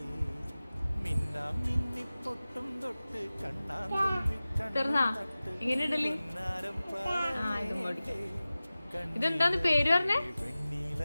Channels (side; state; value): both; inverted; correlation -0.97